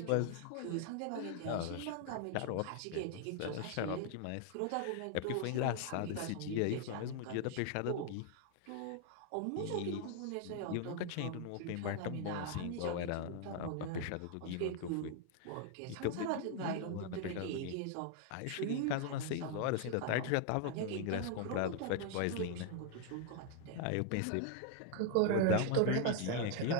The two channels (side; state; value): both; different; correlation 0.00